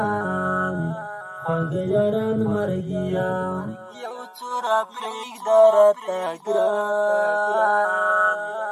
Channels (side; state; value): both; identical; correlation 1.00